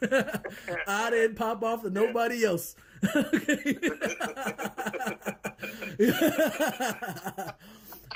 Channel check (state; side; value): identical; both; correlation 1.00